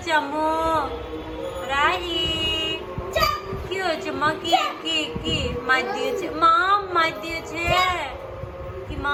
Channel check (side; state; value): both; identical; correlation 1.00